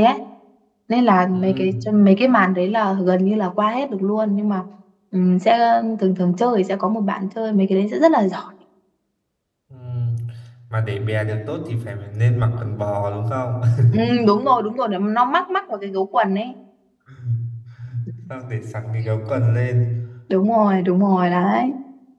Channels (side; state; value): both; identical; correlation 1.00